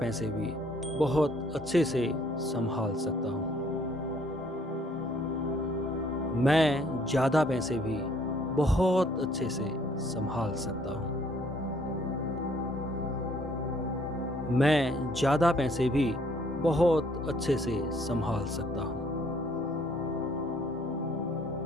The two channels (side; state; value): both; normal; correlation 0.63